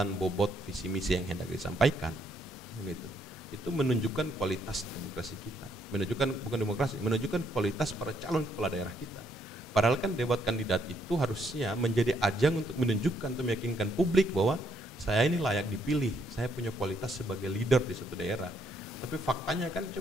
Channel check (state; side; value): normal; both; correlation 0.72